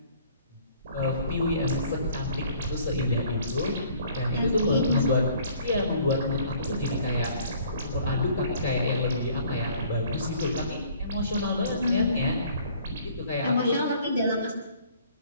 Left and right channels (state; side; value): inverted; both; correlation -0.57